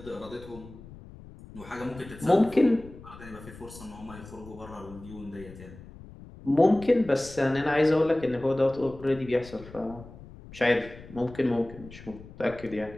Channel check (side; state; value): left; noise; rumble, 17 dB below the sound